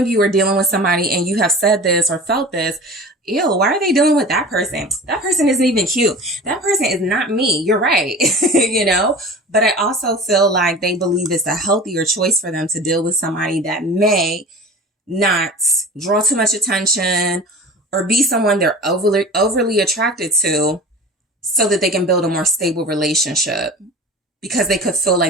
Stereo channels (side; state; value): both; normal; correlation 0.37